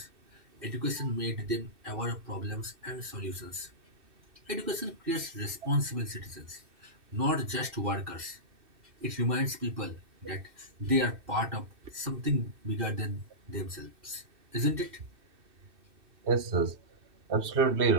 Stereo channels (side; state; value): left; late; 2.6 ms